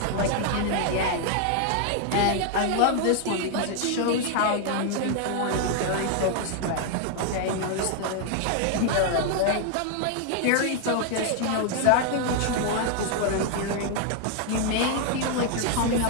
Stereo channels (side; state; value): both; different; correlation 0.00